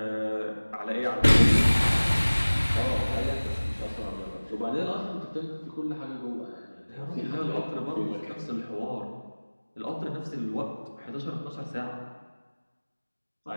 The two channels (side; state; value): both; inverted; correlation -1.00